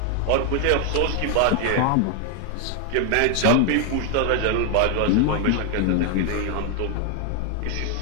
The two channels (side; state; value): both; different; correlation 0.00